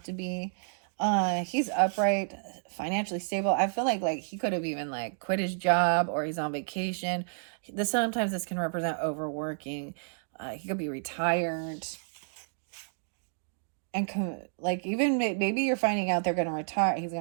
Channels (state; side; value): silent; left; digital silence